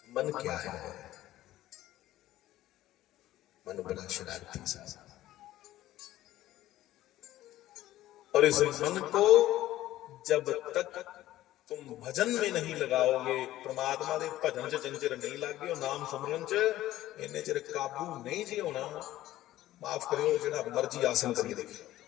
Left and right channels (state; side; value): quieter; right; 14.7 dB